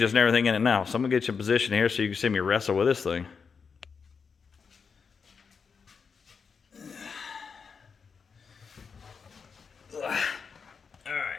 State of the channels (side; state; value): right; quieter; 5.7 dB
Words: and everything in it now. So I'm going to get you in position here so you can see me wrestle with this thing.